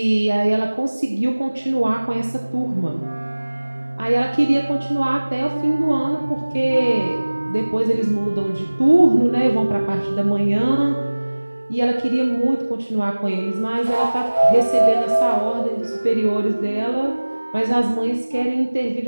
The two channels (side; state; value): both; inverted; correlation -1.00